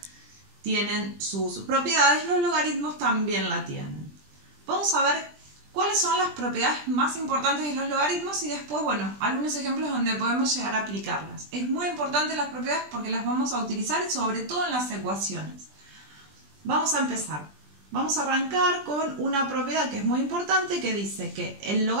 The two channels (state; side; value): late; left; 20 ms